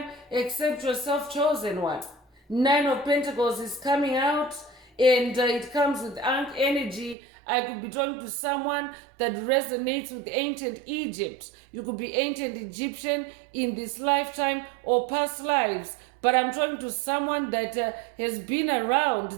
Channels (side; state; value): left; drops out; at 7.2 s